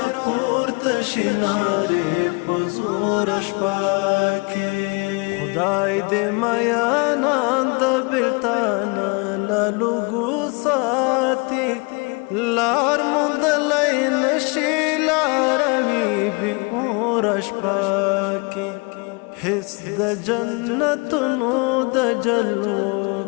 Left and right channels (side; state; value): right; quieter; 29.9 dB